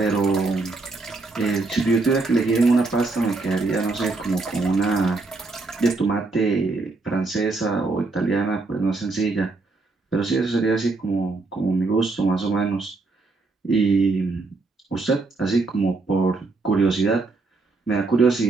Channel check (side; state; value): left; quieter; 3.6 dB